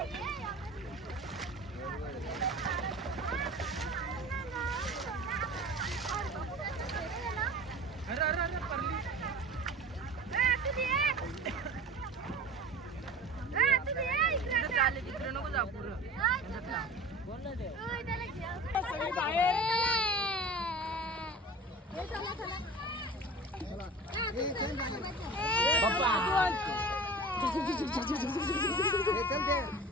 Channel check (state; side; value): normal; both; correlation 0.38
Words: तिकडे नको जा पुढं